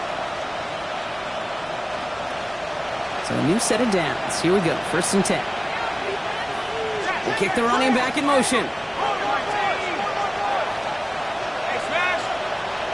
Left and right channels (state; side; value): identical; both; correlation 1.00